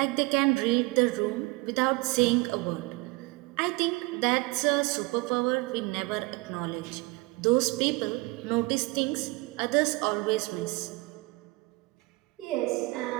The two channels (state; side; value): quieter; left; 24.2 dB